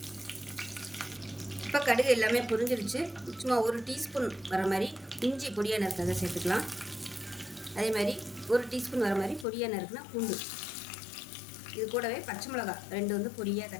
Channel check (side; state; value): right; drops out; at 9.5 s